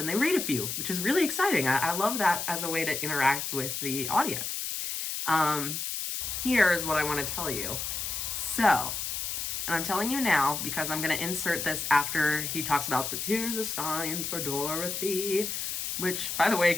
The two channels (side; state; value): left; noise; hiss, 3 dB below the sound